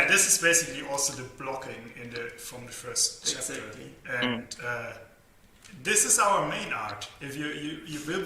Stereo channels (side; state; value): both; identical; correlation 1.00